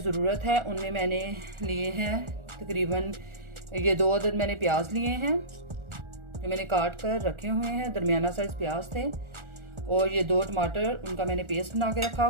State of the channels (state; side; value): late; left; 1.4 ms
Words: है उनमें मैंने लिए हैं तकरीबन ये 2 अदद मैंने प्याज लिए हैं जो मैंने काट कर रखे हुए हैं। दरमियाना साइज़ प्याज थे। और ये 2 टमाटर, उनका मैंने पेस्ट बना के रखा